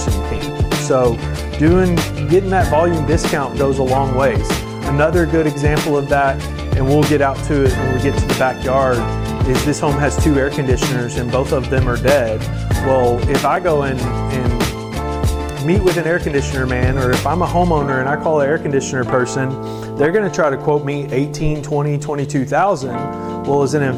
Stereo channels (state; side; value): identical; both; correlation 1.00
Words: can. So getting that volume discount goes a long ways. Another good example of that, and we'll get out to it when we get to the backyard, is this home has 2 air conditioners and both of them are dead. Well, if I go in and meet with an air conditioner man, or if I'm a homeowner and I call an air conditioner person, they're gonna try to quote me $18,000, $20,000, $22,000. Well, as an